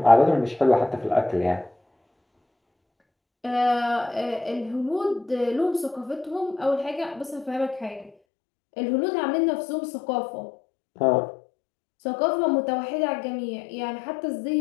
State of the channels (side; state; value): right; drops out; at 8.1 s